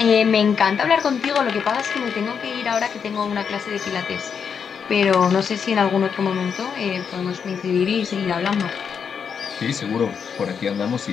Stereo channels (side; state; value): right; quieter; 6.8 dB